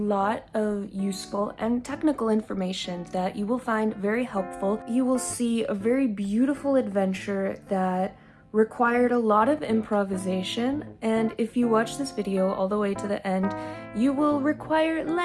of useful and technical information that you will find very helpful. You will see a very beautiful adventure that required a lot of improvisation, and if you watch this video all the way to the end, you will require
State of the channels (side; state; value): both; identical; correlation 1.00